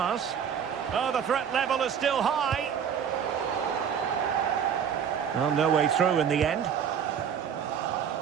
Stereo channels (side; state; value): left; quieter; 7.9 dB